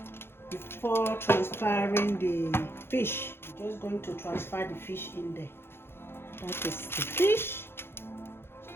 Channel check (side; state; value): right; late; 0.11 ms